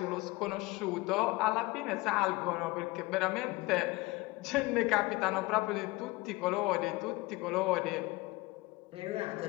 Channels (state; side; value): quieter; right; 22.1 dB